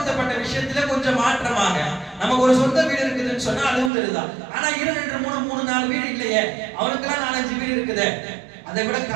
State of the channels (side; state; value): left; drops out; at 3.9 s